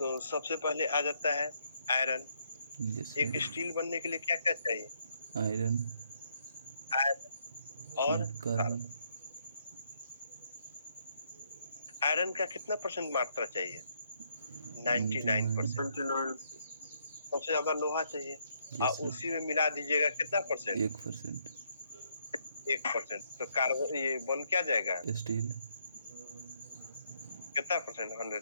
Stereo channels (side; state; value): both; inverted; correlation -0.73